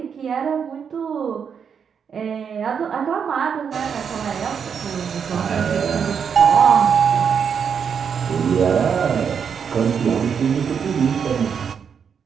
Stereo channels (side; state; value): left; quieter; 7.0 dB